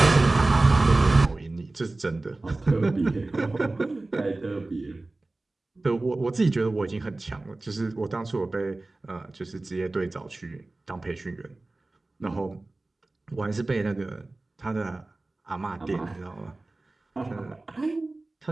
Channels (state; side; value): quieter; left; 3.0 dB